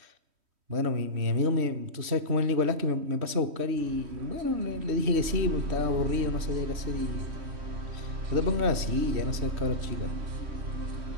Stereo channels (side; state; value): left; late; 3.1 ms